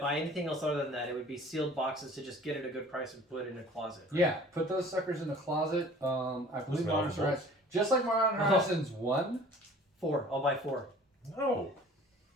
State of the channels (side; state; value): both; normal; correlation 0.48